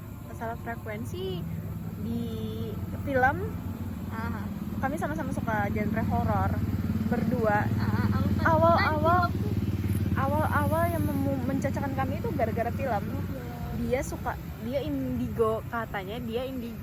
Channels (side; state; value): both; identical; correlation 1.00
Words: di film Ah, kami sama-sama suka genre horor berdua. aku kan Awal yang mencacakan kami itu gara-gara film. Dia indigo, katanya dia